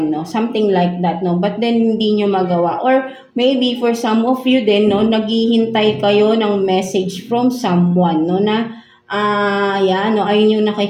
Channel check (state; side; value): identical; both; correlation 1.00